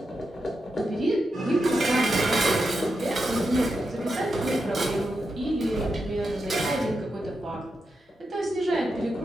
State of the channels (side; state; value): both; normal; correlation 0.87